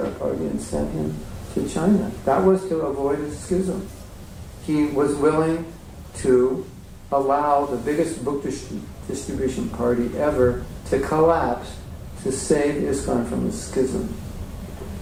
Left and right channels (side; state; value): both; identical; correlation 1.00